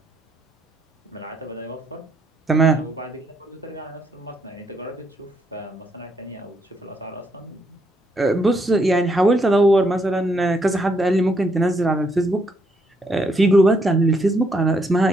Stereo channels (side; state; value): both; normal; correlation 0.74